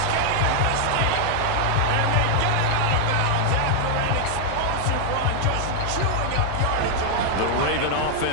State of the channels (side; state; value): both; different; correlation 0.00